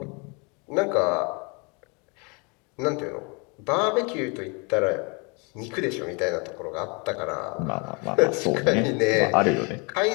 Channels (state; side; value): quieter; right; 31.7 dB